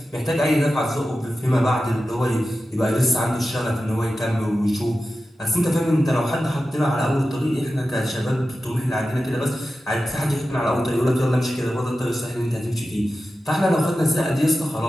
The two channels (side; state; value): both; normal; correlation 0.93